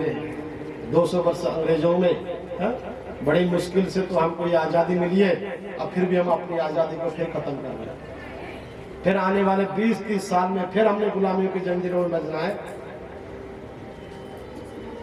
200 वर्ष अंग्रेजों में, है? बड़ी मुश्किल से तो हमको ये आजादी मिली है। अब फिर भी हम अपनी आजादी को फिर खत्म कर रहे हैं। फिर आने वाले 20-30 साल में फिर हमने गुलामियों की जंजीरों में बजना है।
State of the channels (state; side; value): identical; both; correlation 1.00